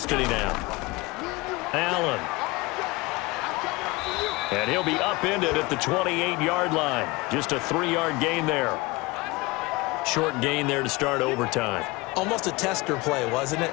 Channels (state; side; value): quieter; right; 23.2 dB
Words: now. Allen. And he'll be upended at the 28-yard line. Just a 3-yard gain there. Short gain there to start overtime. Almost a tester play, wasn't it?